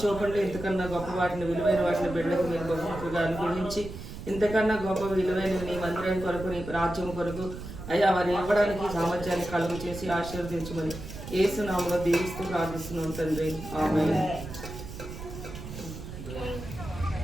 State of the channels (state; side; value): noise; right; rumble, 11 dB below the sound